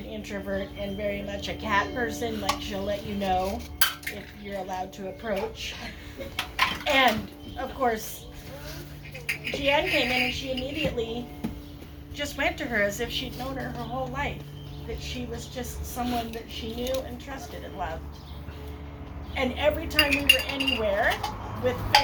introvert and very much a cat person, like she'll let you know if you're allowed to approach. And of course, Jee-an came in and she immediately just went to her as if she'd known her whole life. That she was just someone that she knew and trusted and loved. And every time we were anywhere with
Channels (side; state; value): both; identical; correlation 1.00